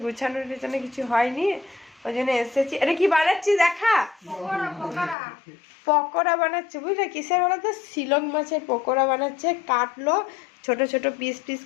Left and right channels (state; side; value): drops out; right; at 5.2 s